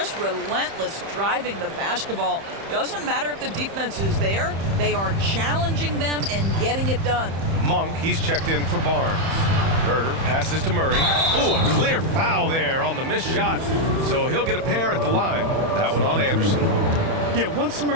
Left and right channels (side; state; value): left; late; 31 ms